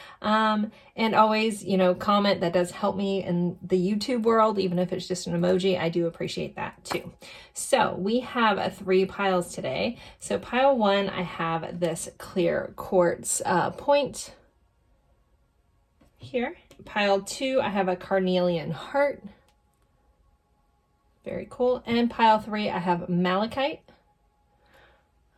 And always, comment. That does help me in the YouTube world, even if it's just an emoji. I do appreciate that too. So we have 3 piles today. So pile 1, I have this clear quartz point here. Pile 2, I have a carnelian heart. Very cool. And pile 3, I have malachite.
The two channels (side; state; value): both; identical; correlation 1.00